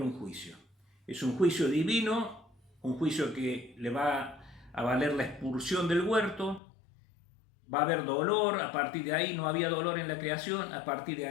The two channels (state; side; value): drops out; right; at 6.6 s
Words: juicio. Es un juicio divino un juicio que le va a valer la expulsión del huerto, va a haber dolor, a partir de ahí no había dolor en la creación, a partir de